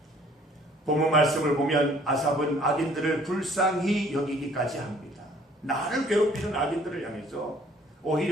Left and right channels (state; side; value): normal; both; correlation 0.57